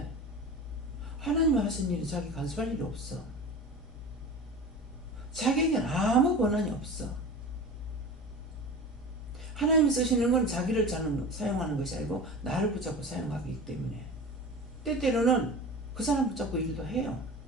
하나님이 하신 일이 자기 간섭할 일이 없어. 자기에게는 아무 권한이 없어. 하나님이 쓰시는 건 자기를 사용하는 것이 아니고 나를 붙잡고 사용하기 때문에 때때로는 그 사람 붙잡고 일도 해요.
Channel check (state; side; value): normal; both; correlation 0.34